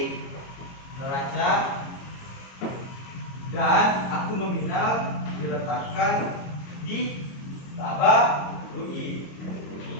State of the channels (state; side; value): late; right; 22 ms